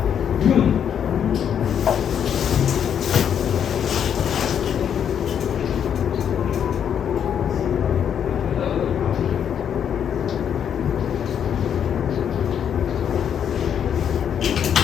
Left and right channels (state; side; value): quieter; right; 8.5 dB